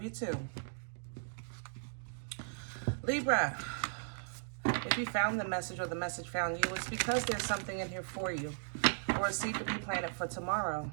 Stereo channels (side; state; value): left; silent; digital silence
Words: you too. Libra, if you found the message or the message found you, it's because there's something in here for you, or a seed to be planted for tomorrow.